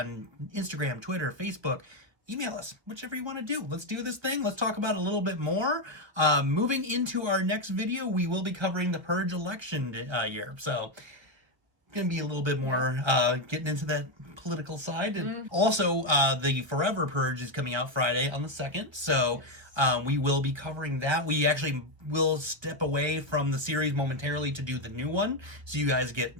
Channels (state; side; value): late; left; 1.1 ms